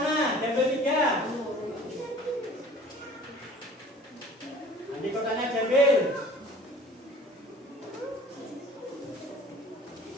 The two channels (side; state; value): both; normal; correlation 0.48